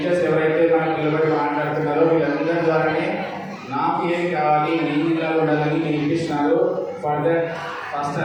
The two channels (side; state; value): both; identical; correlation 1.00